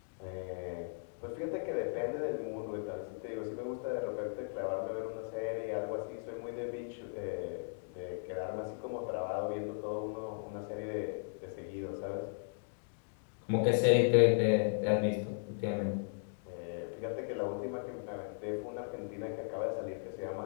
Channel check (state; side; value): silent; right; digital silence